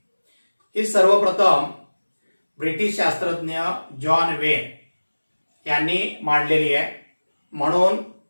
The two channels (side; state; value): both; inverted; correlation -1.00